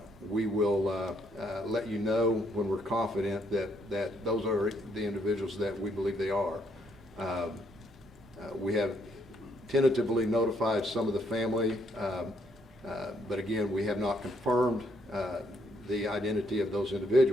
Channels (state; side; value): normal; both; correlation 0.72